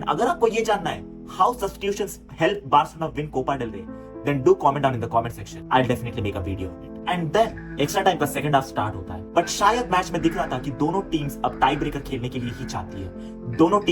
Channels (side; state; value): both; identical; correlation 1.00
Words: अगर आपको ये जानना है how substitutions help Barcelona win Copa del Rey, then do comment down in the comment section. I'll definitely make a video on it. And then extra time का second half start होता है, बट शायद मैच में दिख रहा था कि दोनों टीम्स अब टाई ब्रेकर खेलने के लिए ही चाहती है। दोनों